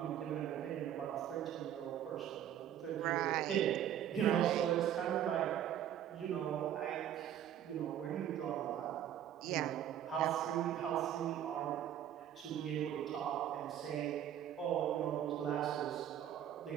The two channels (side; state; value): left; quieter; 10.6 dB